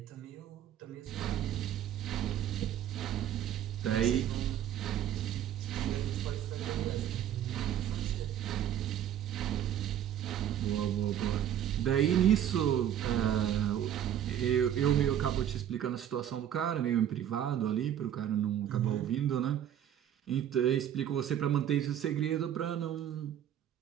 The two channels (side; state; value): left; quieter; 10.4 dB